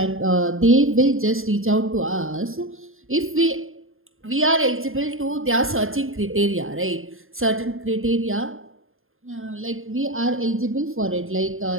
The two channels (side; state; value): left; late; 0.60 ms